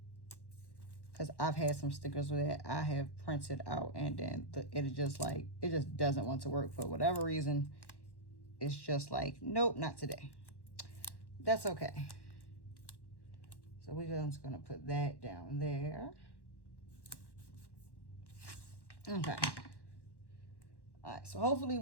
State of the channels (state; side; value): late; right; 1.1 ms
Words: Because I've had some stickers that I have printed out and then it is just like, it just doesn't want to work for whatever reason. It's just like, nope, not today. That's okay. So we're just going to put that down there. Okay. All right, so hopefully